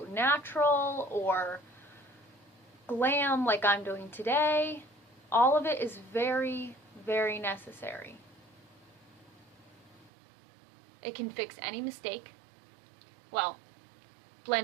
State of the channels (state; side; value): drops out; left; at 10.1 s